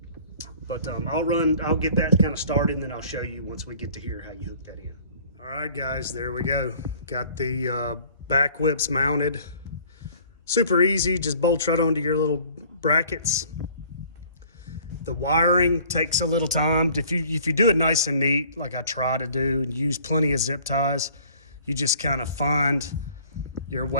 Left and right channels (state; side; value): inverted; both; correlation -0.53